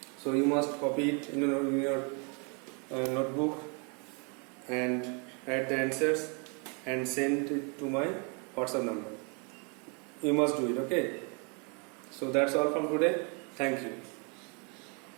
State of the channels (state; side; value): quieter; left; 34.5 dB